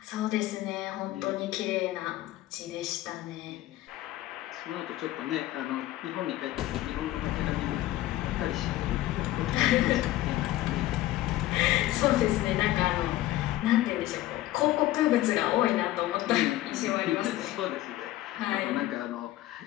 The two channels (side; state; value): right; quieter; 15.5 dB